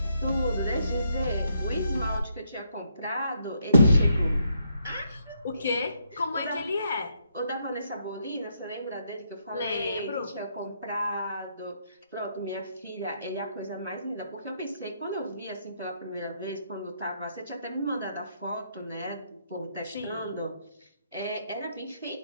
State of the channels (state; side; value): inverted; both; correlation -0.75